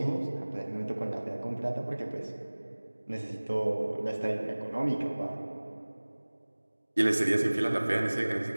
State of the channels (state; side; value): inverted; both; correlation -1.00